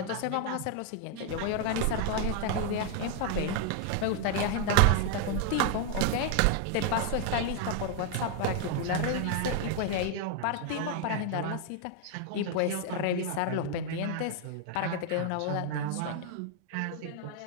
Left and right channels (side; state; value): both; different; correlation 0.00